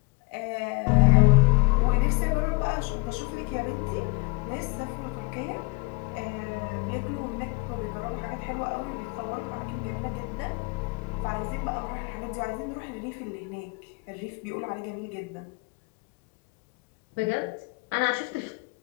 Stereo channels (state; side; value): quieter; right; 28.1 dB